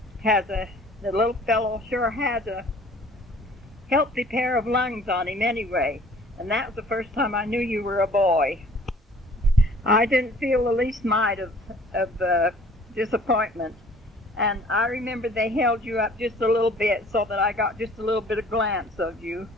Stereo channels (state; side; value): normal; both; correlation 0.53